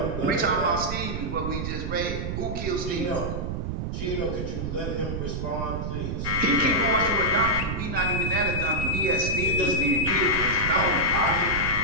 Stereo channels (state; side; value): noise; right; rumble, 3 dB below the sound